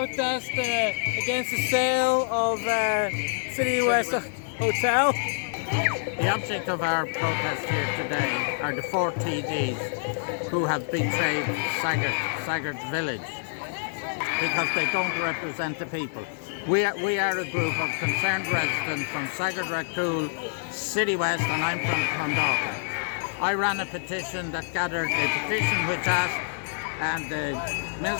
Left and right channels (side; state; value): right; silent; 60 dB below the other